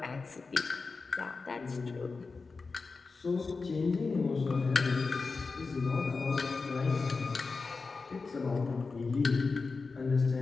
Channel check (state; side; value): quieter; right; 4.3 dB